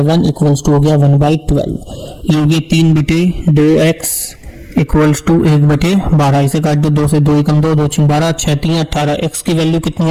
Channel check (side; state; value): both; identical; correlation 1.00